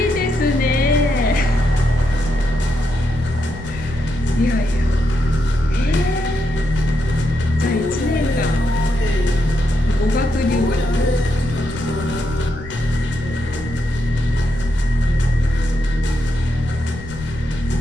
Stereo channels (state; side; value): noise; left; rumble, 14 dB below the sound